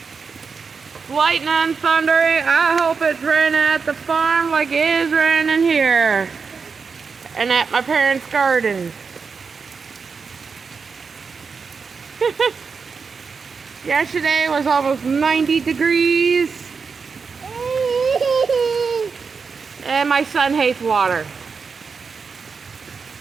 Lightning and thundering. I hope it's raining at the farm like it is raining here. And at my parents' garden. Yesterday was almost 90 degrees. And my son hates water.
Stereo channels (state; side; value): quieter; left; 5.3 dB